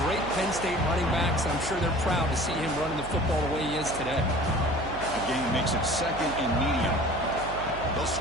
great Penn State running backs. And I'm sure they're proud to see him running the football the way he is today. Game makes it 2nd and medium. They'll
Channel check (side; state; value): right; noise; hum, 11 dB below the sound